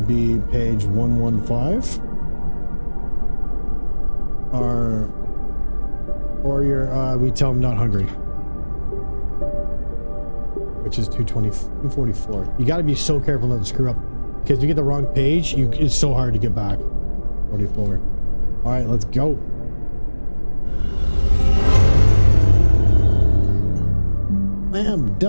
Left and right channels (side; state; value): both; inverted; correlation -1.00